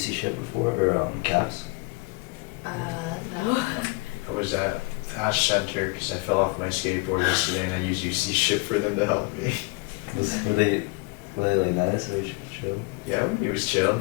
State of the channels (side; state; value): right; quieter; 28.3 dB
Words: SHIP before, or CAPS? No. I was at Ash Center because I fell off my skateboard yesterday, and I used UC SHIP for them to help me. Were they like nice, or chill? Yeah, it was chill.